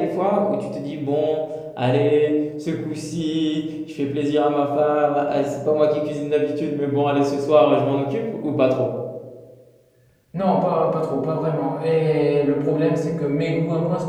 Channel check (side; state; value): both; identical; correlation 1.00